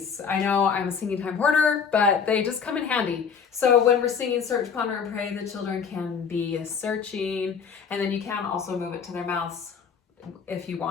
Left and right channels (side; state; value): right; quieter; 6.4 dB